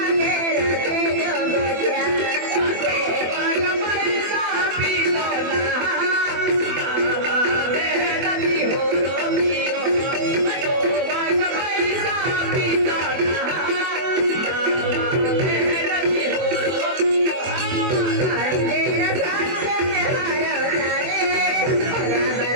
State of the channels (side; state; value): left; late; 24 ms